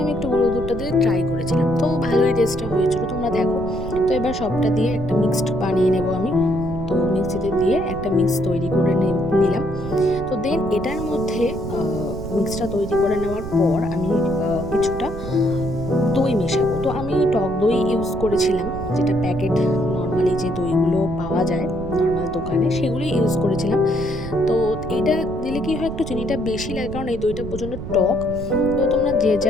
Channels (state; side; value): noise; right; rumble, 9 dB below the sound